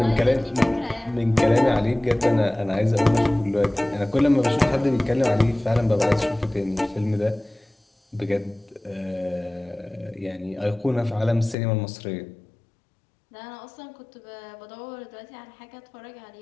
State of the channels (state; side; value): drops out; right; at 11.6 s